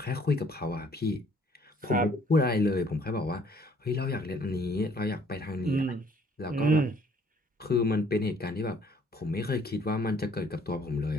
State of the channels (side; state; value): both; normal; correlation 0.60